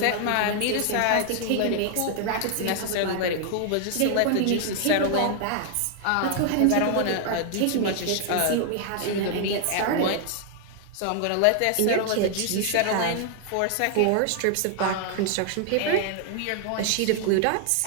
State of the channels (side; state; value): both; different; correlation 0.00